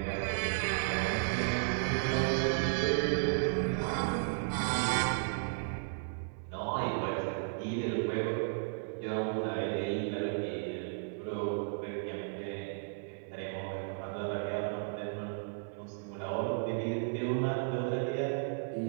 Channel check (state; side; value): silent; left; 55 dB below the other